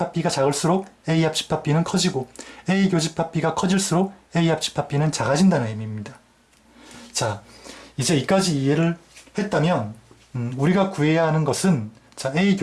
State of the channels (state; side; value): identical; both; correlation 1.00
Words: B가 작을수록 A 합집합 B는 커지고 A 교집합 B가 커질수록 A 합집합 B는 작아진다는 의미입니다. 자, 이제 이까지 이해를 했다면 우리가 구해야 하는 것은 자, A